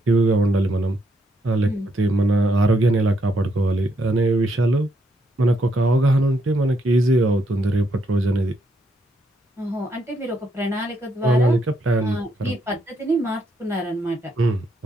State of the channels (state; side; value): normal; both; correlation 0.76